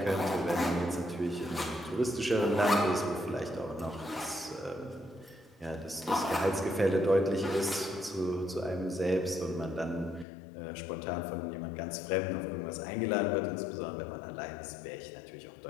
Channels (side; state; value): right; drops out; at 10.2 s